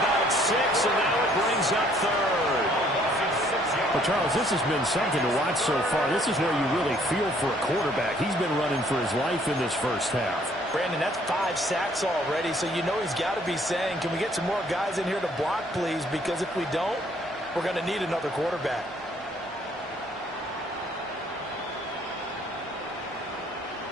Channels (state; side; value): normal; both; correlation 0.62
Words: 6, and now it brings up third. Well, Charles, this has been something to watch so far. This is where you really feel for a quarterback. He's been running for his life in this first half. Brandon, that's 5 sacks already, so you know he's got to be saying, can we get some more guys in here to block, please? Because if we don't, we're going to need another quarterback.